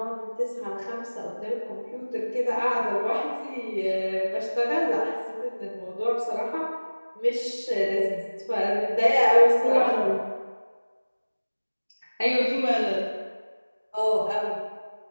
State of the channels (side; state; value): both; inverted; correlation -1.00